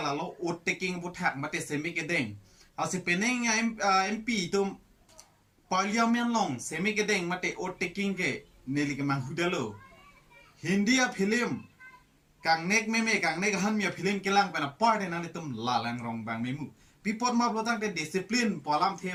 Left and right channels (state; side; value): identical; both; correlation 1.00